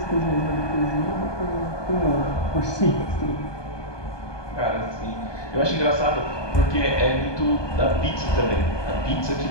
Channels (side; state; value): right; late; 1.2 ms